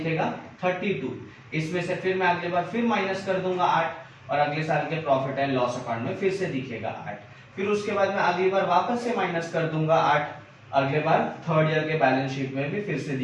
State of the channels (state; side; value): identical; both; correlation 1.00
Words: 32, इसमें से फिर मैं अगले बार फिर माइनस कर दूंगा 8 और अगले साल के प्रॉफिट एंड लॉस अकाउंट में फिर से दिखेगा 8, फिर उसके बाद में अगली बार वापस से माइनस कर दूंगा 8, अगले बार थर्ड ईयर के बैलेंस शीट में भी फिर से